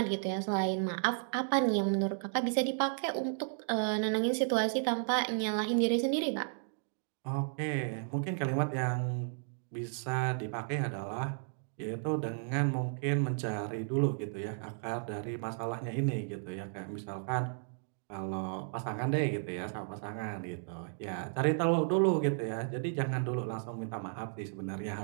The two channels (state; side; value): silent; left; digital silence